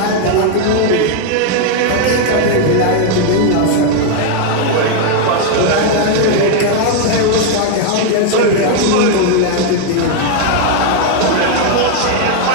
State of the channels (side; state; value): both; different; correlation 0.00